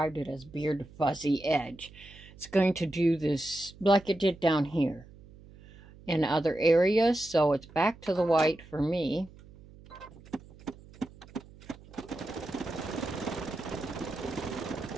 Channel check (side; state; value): right; noise; hum, 21 dB below the sound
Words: it as beard fuzzy edge. It's going to do this like it did down here in other areas, so it's back to the white for me.